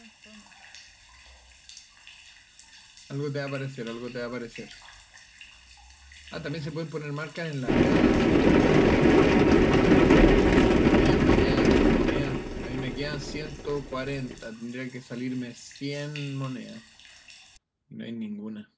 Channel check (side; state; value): both; identical; correlation 1.00